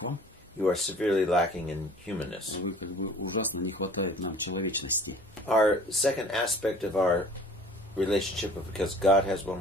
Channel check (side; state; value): both; normal; correlation 0.48